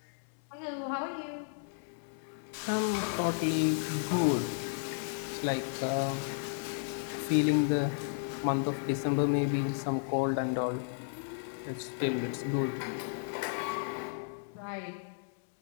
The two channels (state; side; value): silent; right; digital silence